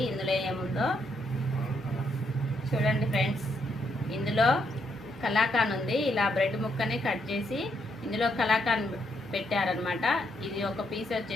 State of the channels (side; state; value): both; normal; correlation 0.76